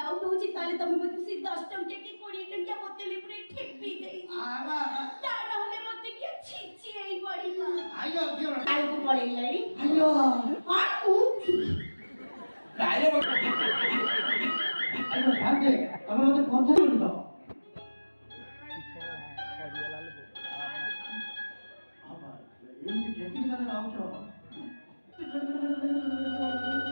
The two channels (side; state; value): both; inverted; correlation -1.00